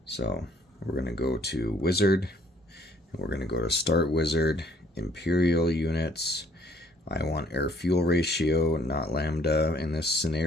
So we're going to go to wizard, and we're going to go to start wizard, imperial units. I want air fuel ratio, not lambda in this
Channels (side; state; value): both; normal; correlation 0.62